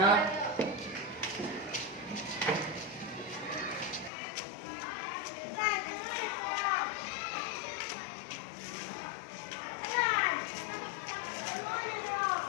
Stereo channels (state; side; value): drops out; right; at 4.1 s